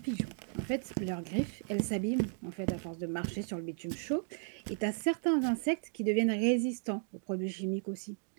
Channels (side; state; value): left; silent; digital silence